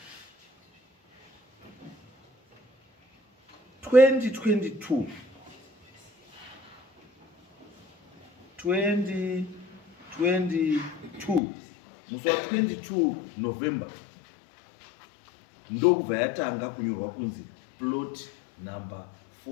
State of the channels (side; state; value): right; drops out; at 11.4 s